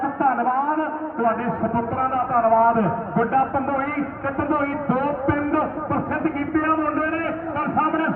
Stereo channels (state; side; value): identical; both; correlation 1.00